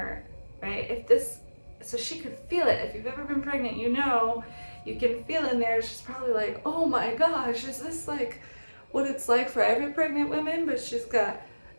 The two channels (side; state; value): both; inverted; correlation -1.00